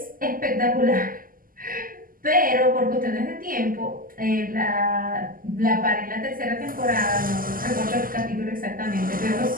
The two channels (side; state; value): left; late; 0.41 ms